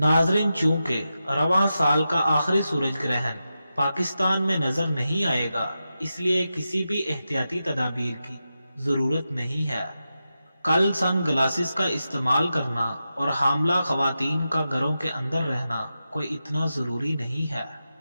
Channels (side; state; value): both; inverted; correlation -0.90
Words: चूंकि रवां साल का आखिरी सूरज ग्रहण पाकिस्तान में नजर नहीं आएगा, इसलिए किसी भी एहतियाती तदाबीर की जरूरत नहीं है। कल सन ग्लासेस का इस्तेमाल करना और हामला खवातीन का घरों के अंदर रहना कोई इतना जरूरी नहीं है।